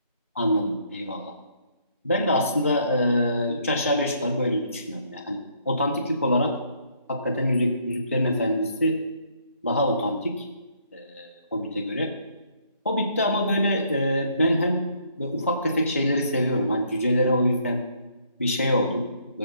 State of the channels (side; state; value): both; inverted; correlation -0.67